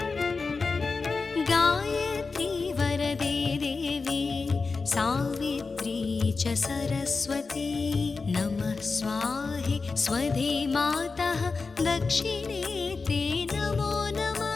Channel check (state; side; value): quieter; right; 4.3 dB